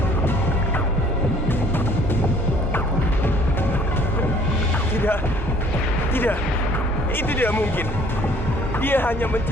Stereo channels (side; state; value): both; normal; correlation 0.56